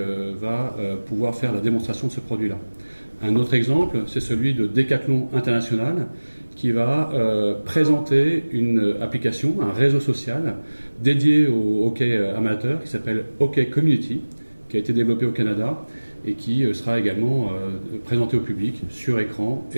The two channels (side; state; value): both; inverted; correlation -1.00